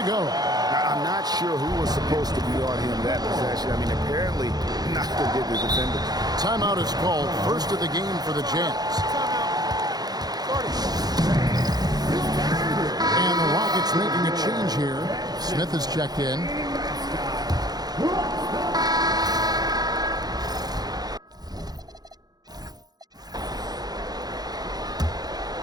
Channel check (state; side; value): late; left; 0.19 ms